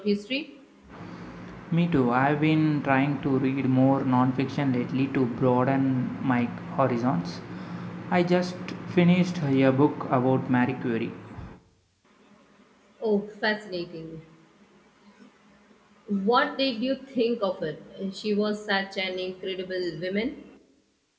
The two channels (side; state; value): both; identical; correlation 1.00